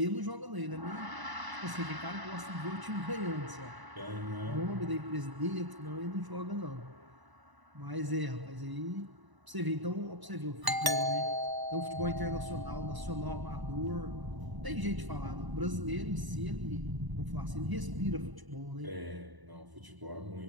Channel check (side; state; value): left; late; 1.0 ms